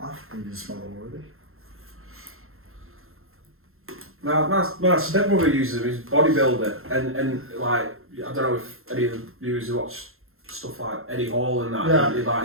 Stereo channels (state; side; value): late; left; 0.61 ms